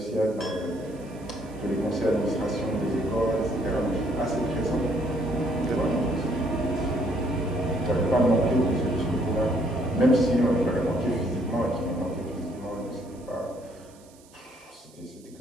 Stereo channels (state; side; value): noise; right; hiss, 27 dB below the sound